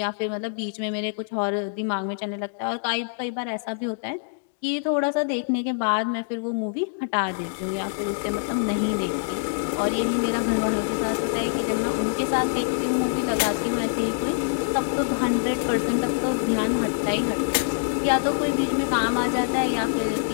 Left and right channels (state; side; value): silent; right; digital silence